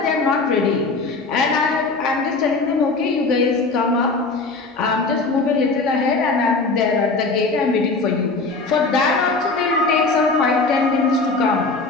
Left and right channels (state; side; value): quieter; right; 3.7 dB